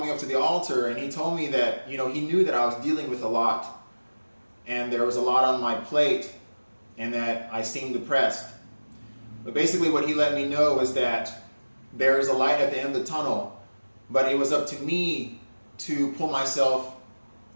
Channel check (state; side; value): inverted; both; correlation -1.00